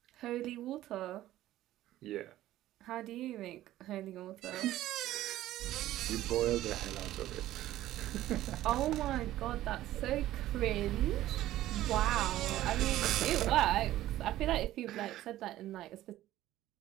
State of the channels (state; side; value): quieter; left; 14.5 dB